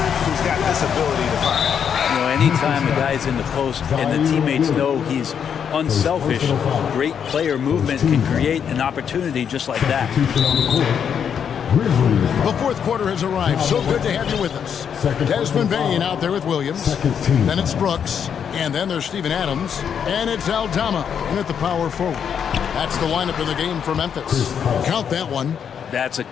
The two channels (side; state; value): right; quieter; 7.8 dB